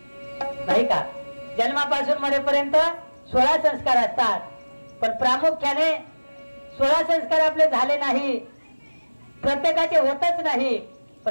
नाही का? जन्मापासून मरेपर्यंत 16 संस्कार असतात पण प्रामुख्याने 16 संस्कार आपले झाले नाही, प्रत्येकाचे होतच नाही,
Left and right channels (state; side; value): inverted; both; correlation -1.00